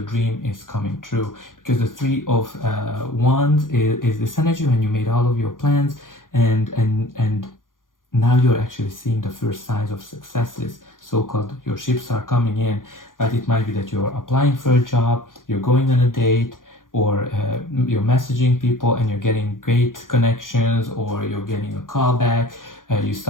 dream is coming true, because the Three of Wands is this energy when you made all of your plans, and now you're actually seeing the first signs of successes, so-called your ships are coming in. But it might be that you're applying for a job, you're going on a date, or you're messaging people and you're getting great connections, or you're getting a call back. You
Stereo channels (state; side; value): late; right; 0.90 ms